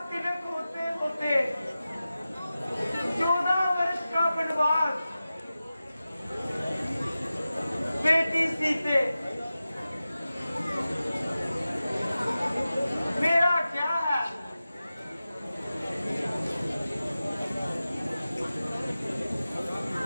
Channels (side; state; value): both; inverted; correlation -0.94